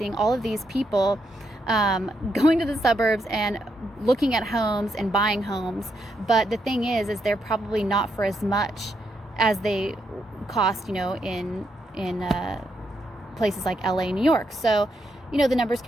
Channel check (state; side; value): normal; both; correlation 0.80